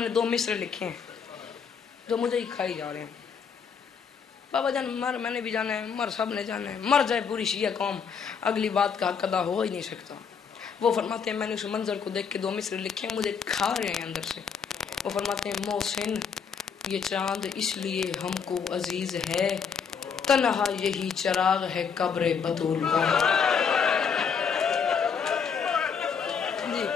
نے 2 مصرے لکھے ہیں جو مجھے ہی کھائی جا رہے ہیں. بابا جان مر میں نے بھی جانا ہے، مر سب نے جانا ہے، مر جائے پوری شیعہ قوم، اگلی بات کا حق ادا ہو ہی نہیں سکتا. وہ فرماتے ہیں میں نے اس منظر کو دیکھ کے 2 مصرے لکھے ہیں، مجھے کھا رہے ہیں اندر سے. وہ فرماتے ہیں محسن یہ چاند اس لیے ہم کو عزیز ہے، تنہا یہی چراغ ہے قبر بطول کا.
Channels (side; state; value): right; quieter; 6.5 dB